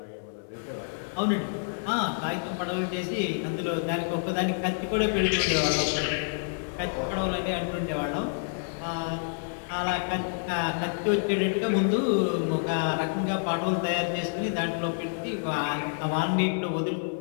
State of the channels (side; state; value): right; silent; digital silence